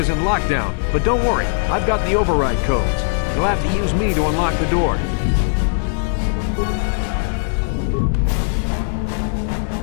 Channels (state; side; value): silent; right; 63 dB below the other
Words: in lockdown. But don't worry, I've got the override codes. You'll have to use me to unlock the door.